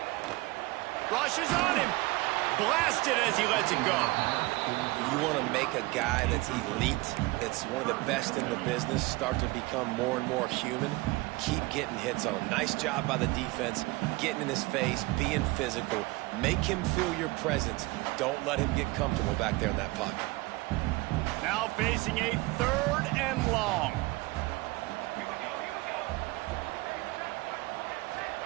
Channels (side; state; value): left; quieter; 22.2 dB